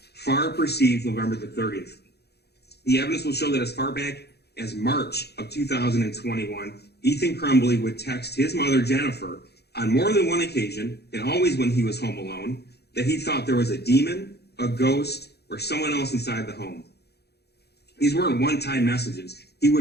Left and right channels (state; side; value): late; right; 0.48 ms